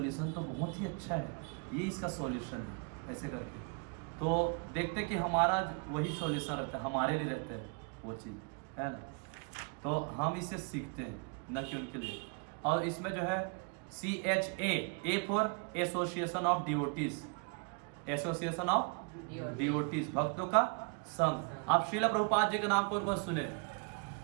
तो बहुत ही अच्छा है, ये इसका सॉल्यूशन है, ऐसे करके तो देखते कि हमारा वही सॉल्यूशन रहता है, हमारे लिए रहता है वो चीज़, है ना। तो हम इसे सीखते हैं न कि उनके लिए। और इसमें जो है CHA, A for association of devotees, association of devotees, भक्तों का संघ। आप श्रील प्रभुपाद जी के नाम पर बस सुने,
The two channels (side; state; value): left; quieter; 35.7 dB